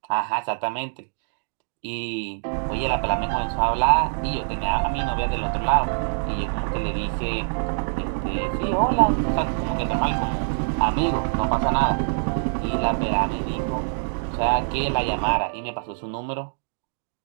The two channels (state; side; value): silent; left; digital silence